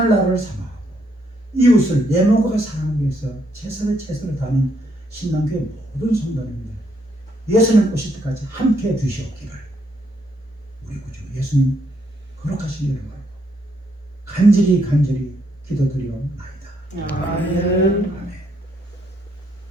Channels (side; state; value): both; normal; correlation 0.73